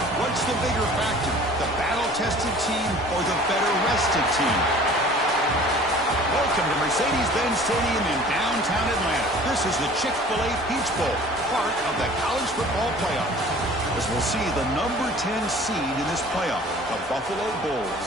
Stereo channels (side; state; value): both; normal; correlation 0.47